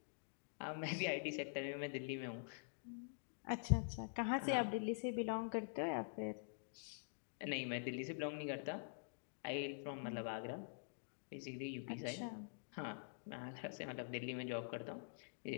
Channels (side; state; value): right; silent; digital silence